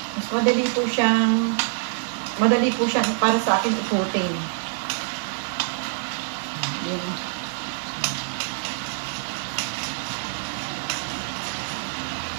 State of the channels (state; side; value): silent; left; digital silence